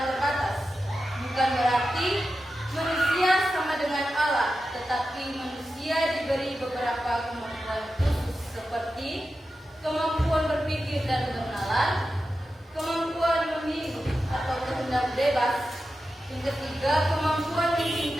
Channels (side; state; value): both; normal; correlation 0.91